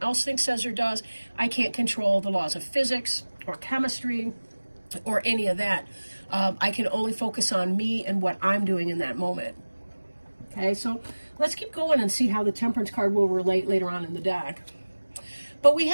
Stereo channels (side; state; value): both; inverted; correlation -1.00